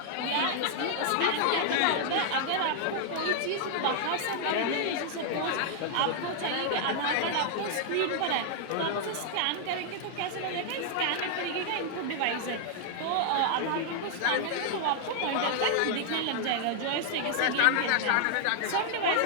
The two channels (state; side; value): different; both; correlation 0.00